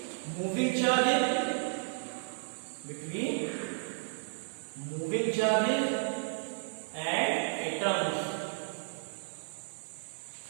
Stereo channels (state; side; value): silent; left; 56 dB below the other